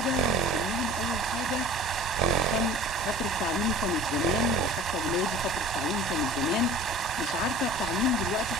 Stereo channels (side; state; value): both; normal; correlation 0.43